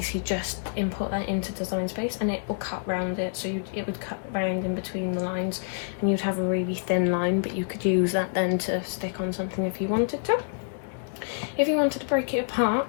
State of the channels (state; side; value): silent; right; digital silence